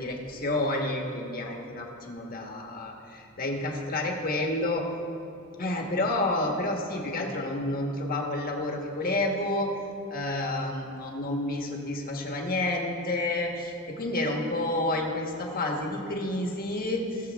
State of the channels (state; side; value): normal; both; correlation 0.20